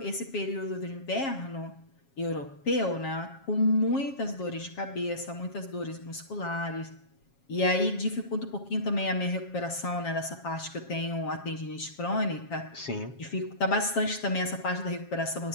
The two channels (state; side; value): late; right; 7.3 ms